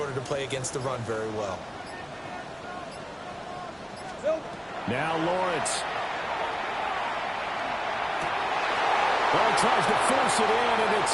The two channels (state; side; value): identical; both; correlation 1.00